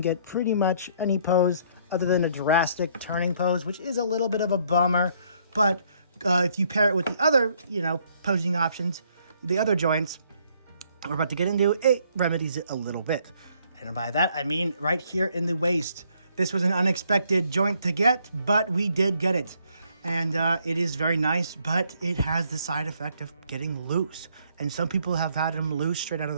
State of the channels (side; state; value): both; inverted; correlation -0.66